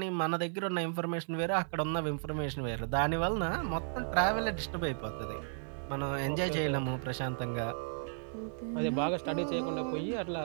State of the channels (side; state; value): left; silent; digital silence